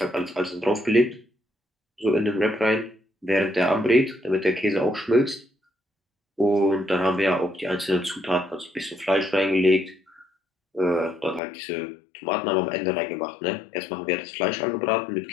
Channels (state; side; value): drops out; right; at 11.4 s